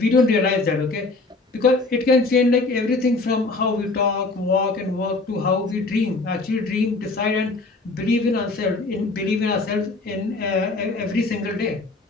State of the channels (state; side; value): quieter; right; 3.5 dB